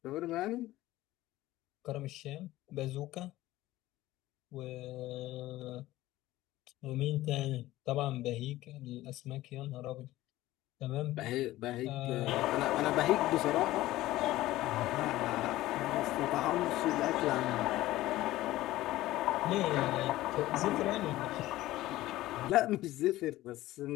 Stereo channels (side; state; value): right; quieter; 16.3 dB